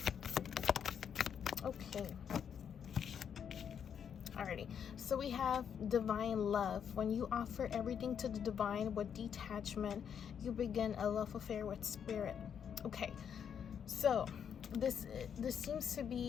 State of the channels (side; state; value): right; quieter; 7.9 dB